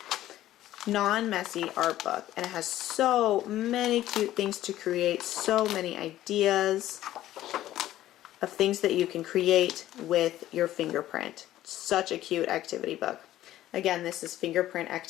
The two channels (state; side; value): quieter; right; 13.9 dB